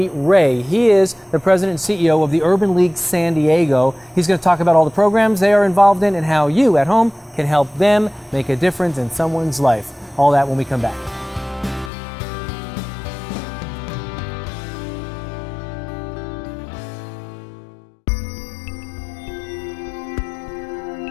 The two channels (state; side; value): drops out; right; at 11.9 s